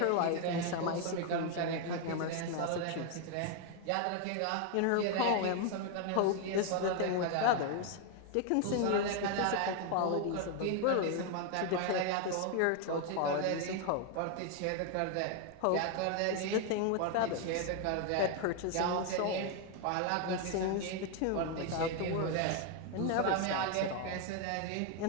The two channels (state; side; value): different; both; correlation 0.01